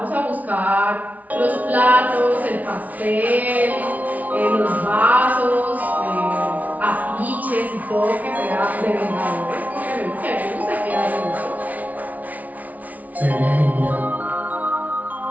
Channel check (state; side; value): late; left; 0.073 ms